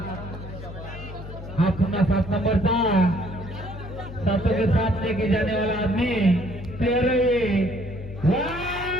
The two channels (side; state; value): left; noise; hum, 11 dB below the sound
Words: हा पुन्हा 7 नंबरचा 7 के साथ लेके जाने वाला आदमी प्लेयर है